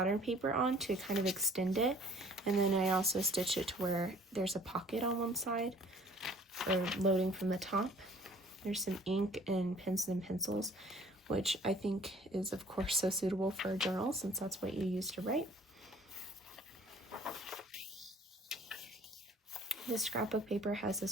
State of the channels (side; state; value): both; normal; correlation 0.54